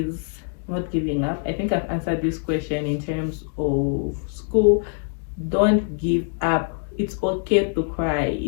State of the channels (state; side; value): silent; right; 57 dB below the other